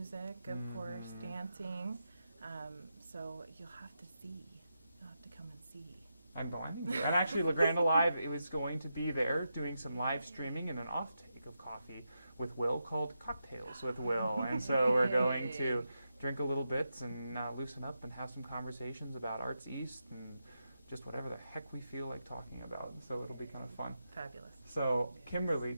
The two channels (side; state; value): both; inverted; correlation -0.87